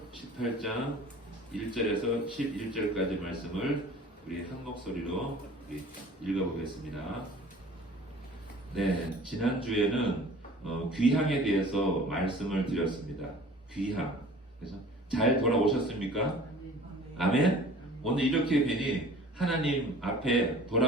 18장 1절에서 11절까지 말씀을 우리 한 목소리로 읽어보겠습니다. 네, 지난주에는 귀향에 대해서 말씀을 드렸습니다. 귀향. 그래서 잘 돌아오셨습니까? 아멘? 오늘 이렇게 뵈니 하나님 앞에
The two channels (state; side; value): normal; both; correlation 0.46